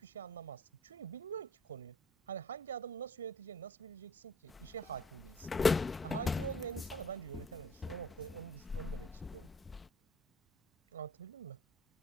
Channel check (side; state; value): both; normal; correlation 0.56